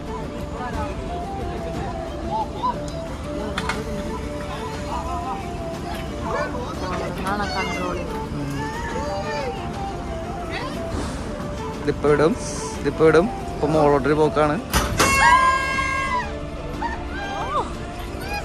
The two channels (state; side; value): identical; both; correlation 1.00